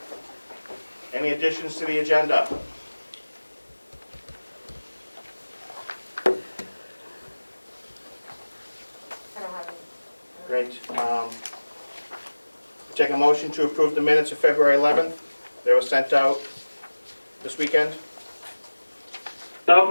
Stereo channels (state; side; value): inverted; both; correlation -1.00